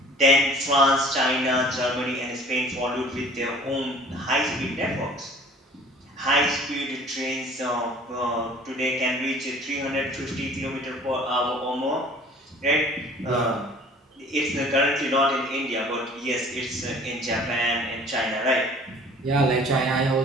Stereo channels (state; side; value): normal; both; correlation 0.49